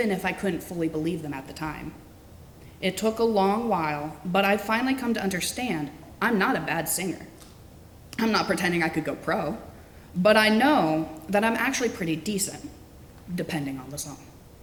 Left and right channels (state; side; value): identical; both; correlation 1.00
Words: if I couldn't fully believe them at the time. It took a long while, but I've finally come to understand I'm not a bad singer. I'm not pretending I could go pro, but I know that I'm actually pretty decent, depending on the song.